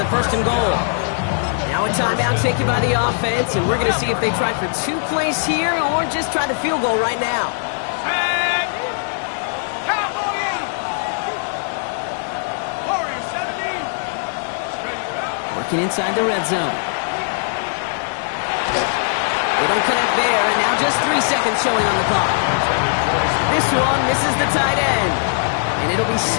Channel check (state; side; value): silent; right; digital silence